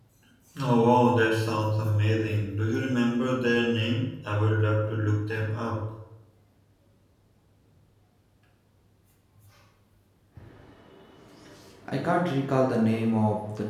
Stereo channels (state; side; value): identical; both; correlation 1.00